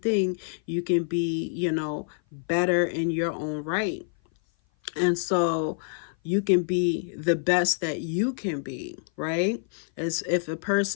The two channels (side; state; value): right; silent; 56 dB below the other